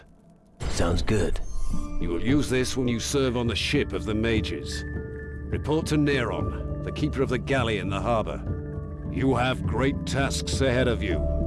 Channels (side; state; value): both; identical; correlation 1.00